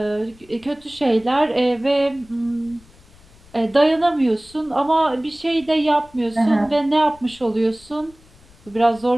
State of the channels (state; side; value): noise; left; rumble, 26 dB below the sound